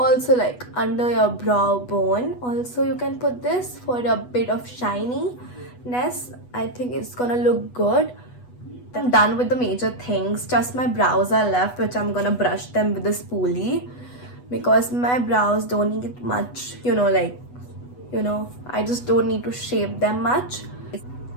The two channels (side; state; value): right; late; 8.1 ms